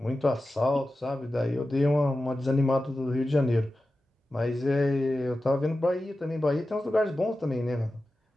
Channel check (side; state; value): both; normal; correlation 0.93